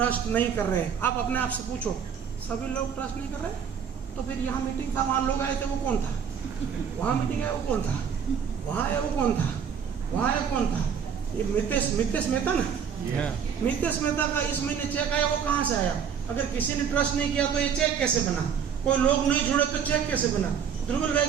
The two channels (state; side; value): quieter; left; 7.4 dB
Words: नहीं कर रहे हैं, आप अपने आप से पूछो सभी लोग ट्रस्ट नहीं कर रहे, तो फिर यहाँ मीटिंग था, वहाँ लोग आए थे, वो कौन था? वहाँ मीटिंग है, वो कौन था? वहाँ है, वो कौन था? वहाँ है, कौन था? ये मितेश मेहता ना, मितेश मेहता का इस महीने चेक आया, वो कहाँ से आया? अगर किसी ने ट्रस्ट नहीं किया तो ये चेक कैसे बना? कोई लोग नहीं जुड़े तो चेक कैसे बना? ध्रुवल भाई